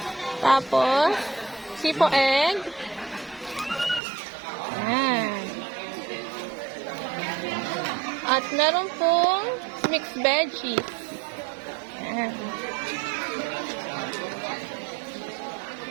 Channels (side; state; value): left; drops out; at 4.0 s